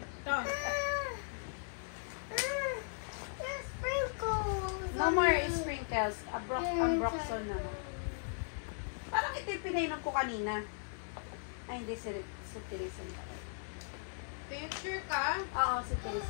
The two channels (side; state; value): right; silent; digital silence